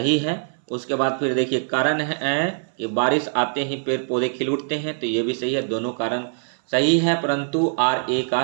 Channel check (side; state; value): left; silent; 63 dB below the other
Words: है। उसके बाद फिर देखिए कारण है कि बारिश आते ही पेड़ पौधे खिल उठते हैं, तो ये भी सही है। दोनों कारण सही है, परंतु RA का